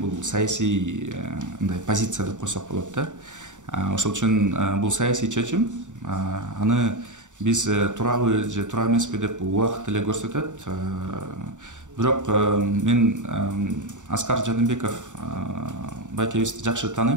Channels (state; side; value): late; left; 0.86 ms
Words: саясий позиция деп койсок болот да. Ошол үчүн бул саясий чечим. Аны биз турабы же туура эмеспи деп убакыт эле көрсөтөт. Бирок мен Аскар Жаныбеков байкебизди жакшы